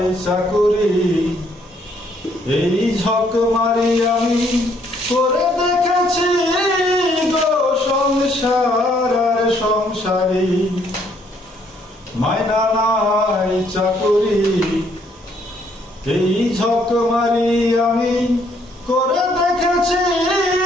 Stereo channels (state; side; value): normal; both; correlation 0.68